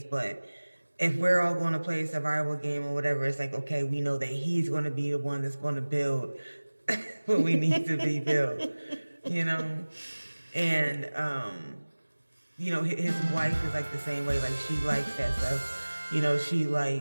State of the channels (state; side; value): inverted; both; correlation -1.00